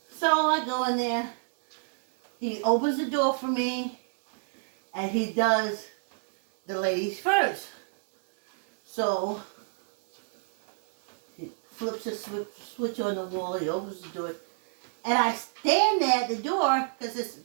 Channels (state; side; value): silent; left; digital silence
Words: So I go in there. He opens the door for me, and he does the ladies first. So he flips a switch on the wall. He opens the door. And I stand there at the door because it's